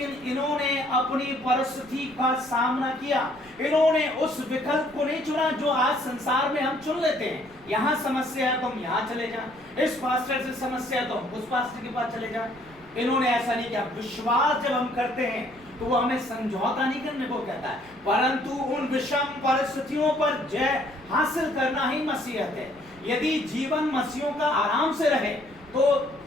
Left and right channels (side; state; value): right; noise; rumble, 25 dB below the sound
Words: इन्होंने अपनी परिस्थिति का सामना किया। इन्होंने उस विकल्प को नहीं चुना जो आज संसार में हम चुन लेते हैं। यहाँ समस्या है तो हम यहाँ चले जाएं, इस पास्टर से समस्या है तो हम उस पास्टर के पास चले जाएं। इन्होंने ऐसा नहीं किया। विश्वास जब हम करते हैं तो वो हमें समझौता नहीं करने को कहता है, परंतु उन विषम परिस्थितियों पर जय हासिल करना ही मसीहत है। यदि जीवन मसीहों का आराम से रहे तो